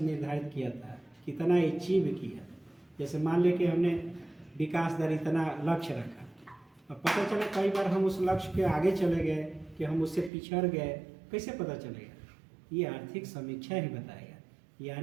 निर्धारित किया था, कितना अचीव किया। जैसे मान लें कि हमने विकास दर इतना लक्ष्य रखा, अब पता चला कई बार हम उस लक्ष्य के आगे चले गए कि हम उससे पिछड़ गए, कैसे पता चलेगा? ये आर्थिक समीक्षा ही बताएगा।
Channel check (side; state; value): left; drops out; at 10.3 s